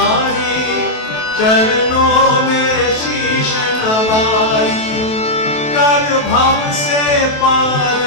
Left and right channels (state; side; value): late; right; 28 ms